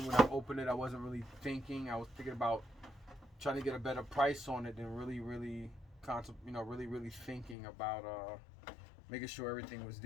when I opened it. I wasn't really thinking. I was thinking about trying to get a better price on it than really thinking about making sure everything was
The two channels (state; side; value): drops out; right; at 7.6 s